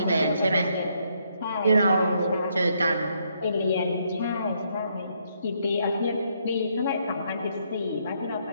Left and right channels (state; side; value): inverted; both; correlation -0.73